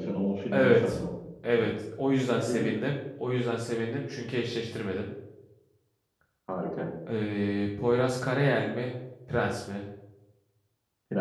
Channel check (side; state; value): both; identical; correlation 1.00